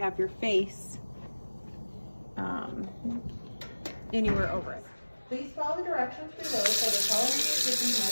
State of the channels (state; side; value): inverted; both; correlation -1.00